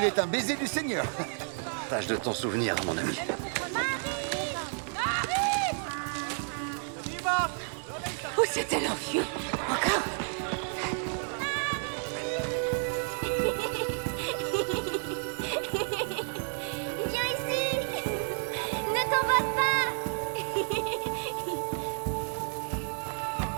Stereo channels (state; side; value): silent; left; 57 dB below the other